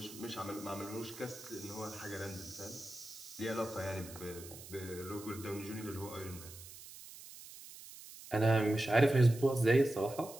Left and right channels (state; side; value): noise; right; hiss, 16 dB below the sound